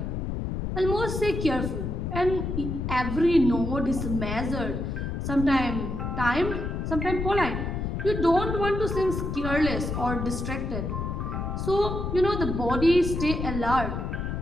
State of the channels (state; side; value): noise; left; rumble, 3 dB below the sound